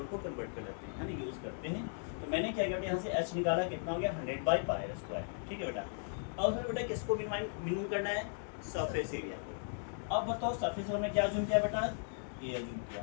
को कन्वर्ट कर लेते हैं, है ना, यूज़ करते हैं. तो मैंने क्या किया, यहाँ से एच निकाला, कितना हो गया 100 बाई पाई आर स्क्वायर. ठीक है बेटा, अब हमें बेटा किसको मिनिमम करना है, सरफेस एरिया को. अब बताओ सरफेस हमने क्या जूम किया बेटा, ये जूम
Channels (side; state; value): right; silent; digital silence